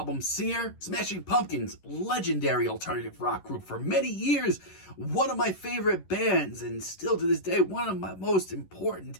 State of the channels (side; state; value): right; late; 11 ms